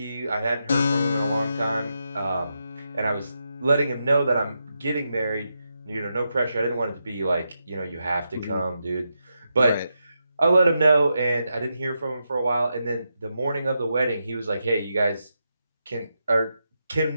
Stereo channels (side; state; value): both; inverted; correlation -0.85